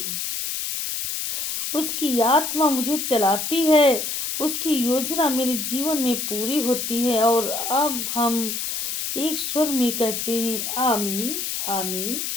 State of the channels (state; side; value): noise; left; hiss, 3 dB below the sound